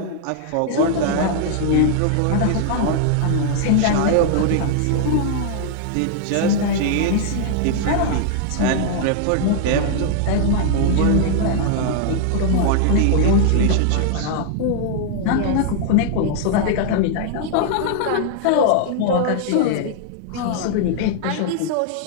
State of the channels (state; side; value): different; both; correlation -0.01